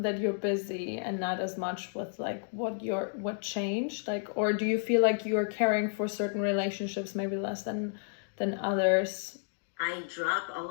you're busy, and not as much with like what changed, like, or do you feel like you're caring for certain relationships maybe less than others? I drop all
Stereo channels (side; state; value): right; silent; digital silence